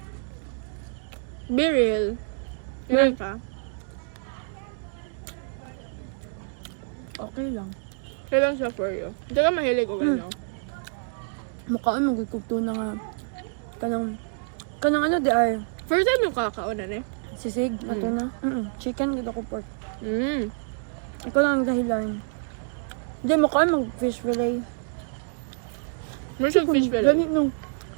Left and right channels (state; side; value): silent; left; digital silence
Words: Be real. Ganun ka. Okay lang. Kailan siya for you? Hindi ka mahilig o gano'n. Mukhaan magkukugto na nga. Kanang ano di ay. First time yung kakaunan eh. Sisig, ato na. Chicken, gud ako pork. Mm. Ikaw lang ang dahilan. Hindi, mukhaan mag-fish fillet. First time fish fillet. Ganit nung.